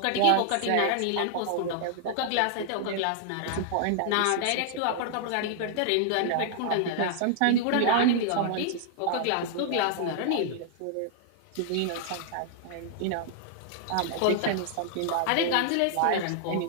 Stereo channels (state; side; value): different; both; correlation -0.01